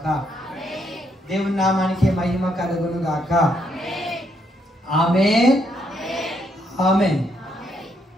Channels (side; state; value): both; normal; correlation 0.74